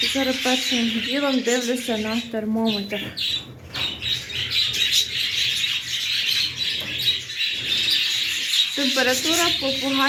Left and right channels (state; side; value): identical; both; correlation 1.00